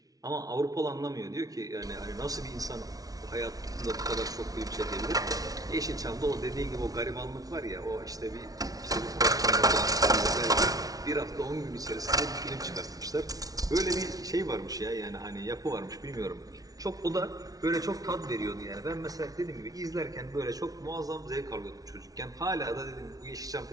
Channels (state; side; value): late; left; 0.18 ms